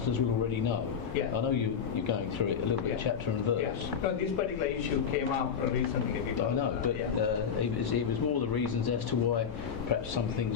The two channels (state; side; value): quieter; right; 7.1 dB